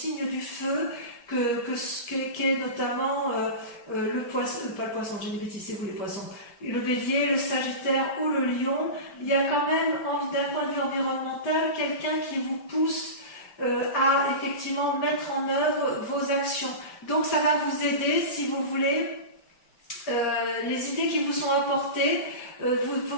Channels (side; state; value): right; late; 5.1 ms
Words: du feu, qui est notamment le poisson, pas le poisson, j'ai des bêtises, c'est vous les poissons, le bélier, le sagittaire ou le lion. Il y a quand même, d'un point de vue environnemental, quelqu'un qui vous pousse à effectivement mettre en œuvre vos actions. Donc ça va vous aider, si vous voulez, les idées qui vous sont apportées